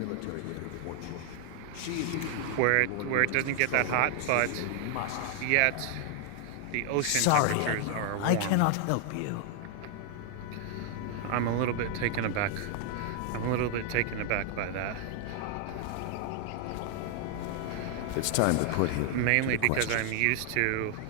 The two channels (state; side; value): different; both; correlation 0.00